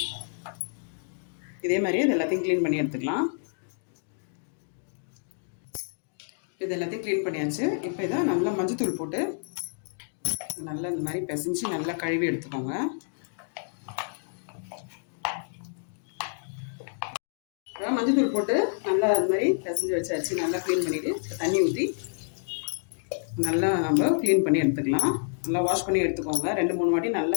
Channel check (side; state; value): right; silent; digital silence